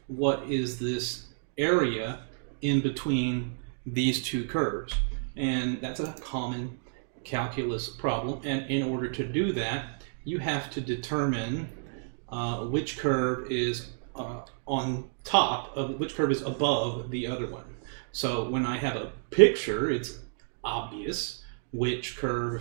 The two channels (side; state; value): left; silent; digital silence